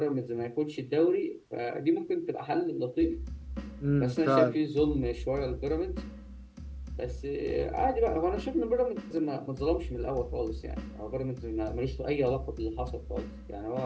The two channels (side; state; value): both; identical; correlation 1.00